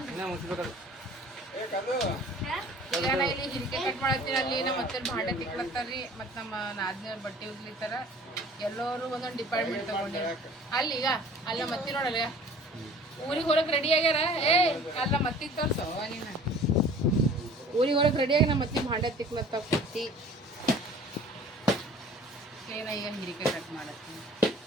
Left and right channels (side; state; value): both; normal; correlation 0.48